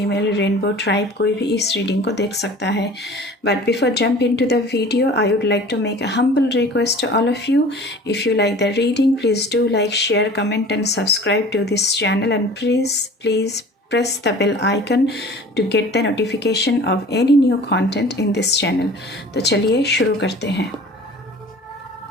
rainbow tribe, कोई भी इस रीडिंग को देख सकता है। But before jump into the video, I would like to make a humble request to all of you. If you like the reading, please do like, share, comment and subscribe to this channel, and please press the bell icon to get the notification of any new content in this channel. तो चलिए शुरू करते हैं।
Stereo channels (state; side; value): normal; both; correlation 0.44